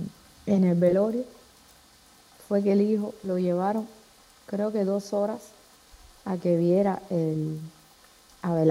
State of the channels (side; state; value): both; identical; correlation 1.00